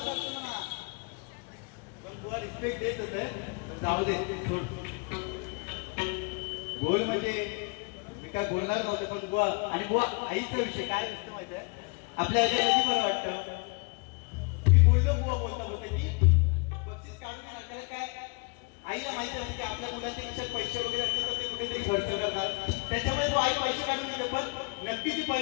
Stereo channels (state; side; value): quieter; right; 32.6 dB